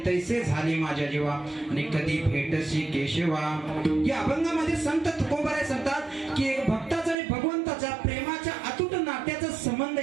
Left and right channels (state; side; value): drops out; left; at 7.2 s